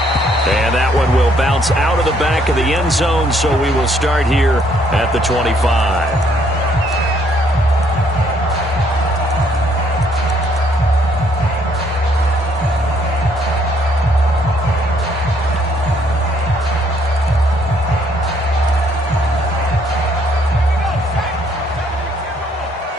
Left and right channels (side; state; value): both; normal; correlation 0.67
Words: And that one will bounce out of the back of the end zone, so we will start here at the 25.